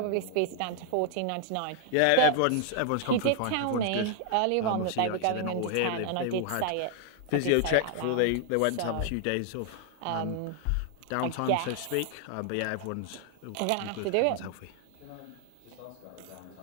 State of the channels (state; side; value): different; both; correlation 0.00